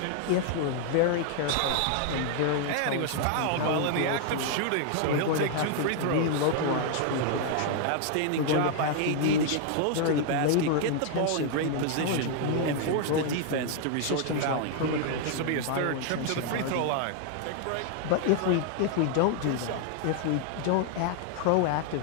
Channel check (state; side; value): different; both; correlation 0.00